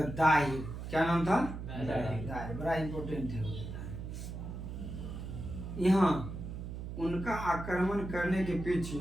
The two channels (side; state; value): right; noise; hum, 7 dB below the sound